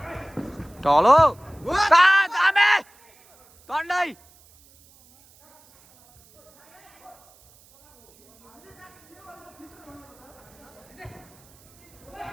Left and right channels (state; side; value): noise; right; hiss, 29 dB below the sound